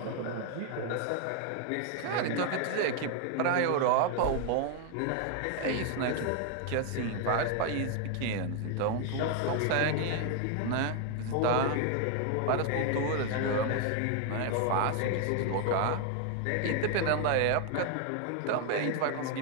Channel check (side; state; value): both; different; correlation 0.00